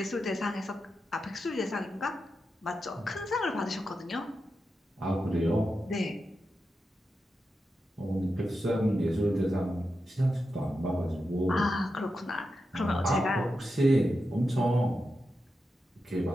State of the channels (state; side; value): normal; both; correlation 0.89